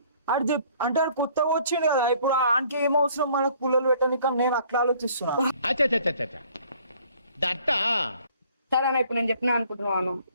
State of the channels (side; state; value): both; inverted; correlation -0.58